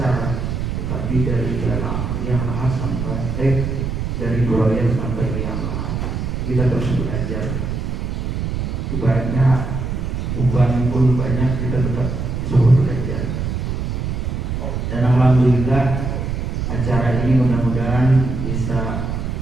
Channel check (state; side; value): noise; right; rumble, 2 dB below the sound